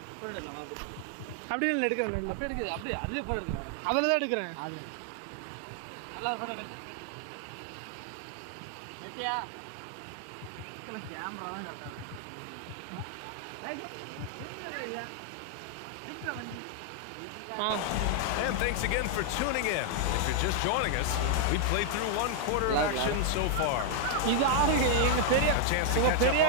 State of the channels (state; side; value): different; both; correlation 0.00